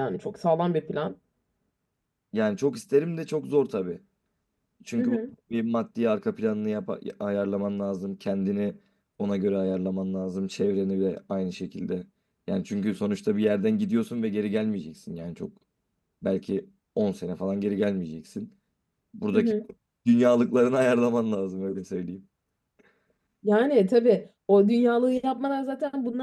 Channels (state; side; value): identical; both; correlation 1.00